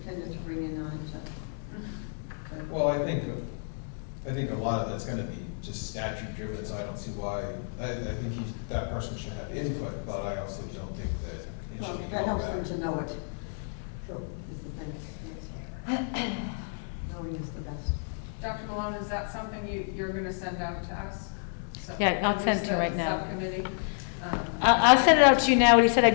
to bring in on it, so. Well, I think a lot of that's gonna be just statute driven, so I don't see why, I think that person should have input, but I also don't think that it Well, should be that held helps them back. to know it. True. Is the thing. Yes. Knowing is the best. Dr. Malone, is that something you're gonna send out to us? So- Yeah, I'll send it to you right now. Subcommittee? I'll send it out to you now. What he said,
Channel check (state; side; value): silent; right; digital silence